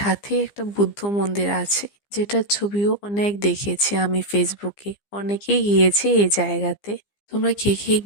একটা বুদ্ধ মন্দির আছে, যেটার ছবিও অনেক দেখেছি আমি ফেসবুকে। অনেকেই গিয়েছে এই জায়গাতে। তোমরা কে কে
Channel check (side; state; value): right; late; 15 ms